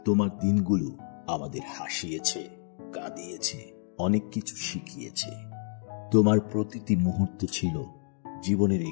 তোমার দিনগুলো আমাদের হাসিয়েছে, কাঁদিয়েছে, অনেক কিছু শিখিয়েছে। তোমার প্রতিটি মুহূর্ত ছিল জীবনের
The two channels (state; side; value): silent; right; 57 dB below the other